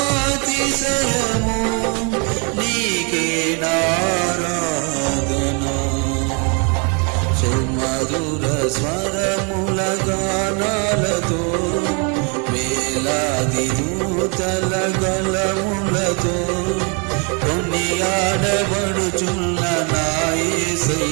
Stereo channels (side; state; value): left; quieter; 34.5 dB